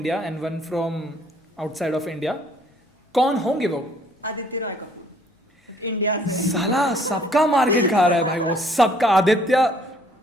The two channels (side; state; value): both; normal; correlation 0.61